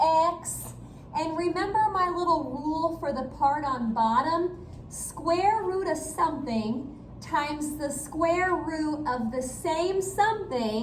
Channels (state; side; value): identical; both; correlation 1.00